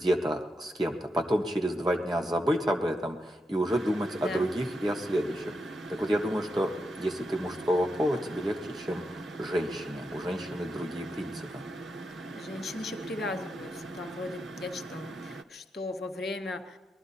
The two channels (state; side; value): normal; both; correlation 0.85